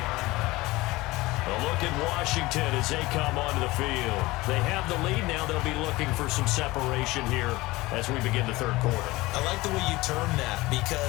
A look at Washington as they come onto the field. They have the lead now. They'll be looking for some separation here as we begin the third quarter. I like the way you term that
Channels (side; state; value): right; quieter; 20.4 dB